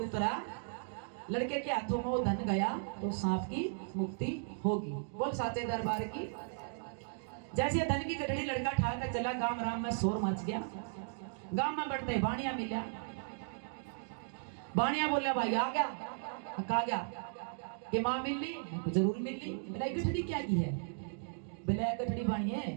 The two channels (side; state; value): left; silent; digital silence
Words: लड़के के हाथों में वो धन गया तो सांप की मुक्ति होगी। बोल साचे दरबार की। जैसे धन की गठड़ी लड़का ठा कर चला, गांव राम में शोर मच गया। गांव में बढ़ते बाणिया मिला, बाणिया बोला भाई आ गया, कहा गया कि मां मिल ली, जरूर मिल ली। मेरा गठड़ी क्या की है, बोला गठड़ी बाणिया